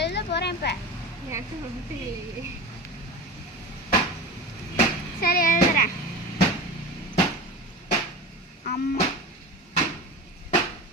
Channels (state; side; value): normal; both; correlation 0.30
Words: எழுத போகிறேன் இப்போ. எனக்கு ரொம்ப இல்லையே. சரி, எழுதுறேன். அம்மா,